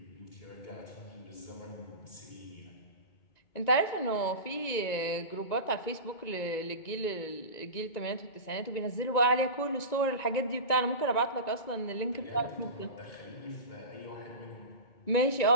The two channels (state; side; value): late; right; 1.9 ms